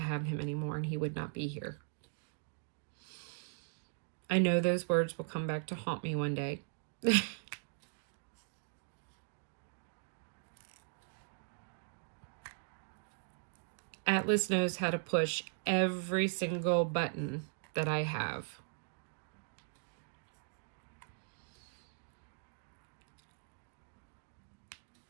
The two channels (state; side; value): silent; left; digital silence